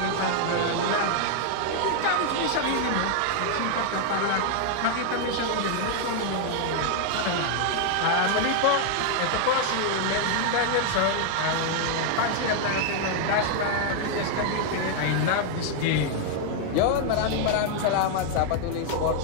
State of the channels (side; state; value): both; different; correlation 0.00